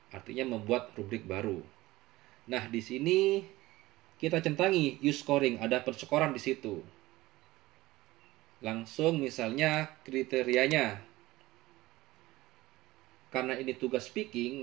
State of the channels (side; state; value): left; quieter; 18.4 dB